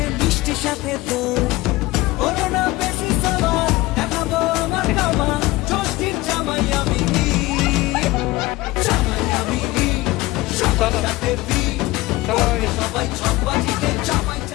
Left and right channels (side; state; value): right; quieter; 19.6 dB